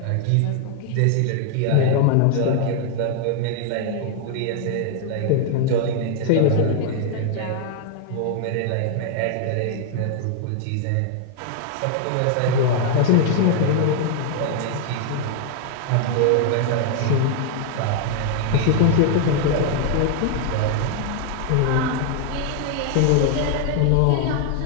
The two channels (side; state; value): both; different; correlation 0.00